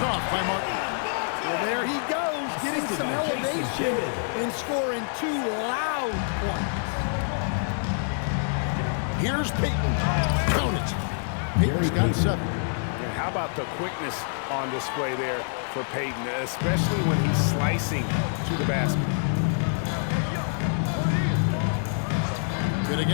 off by Martin. Well, there he goes, getting some elevation and scoring 2 loud points. Here's Payton. Count it. Payton's got 7. And how about the quickness on display there for Payton, especially when he's slicing to the basket. Good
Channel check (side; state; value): right; silent; digital silence